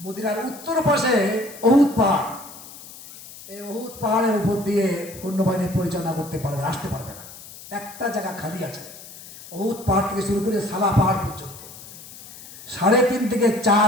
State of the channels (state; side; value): noise; left; hiss, 17 dB below the sound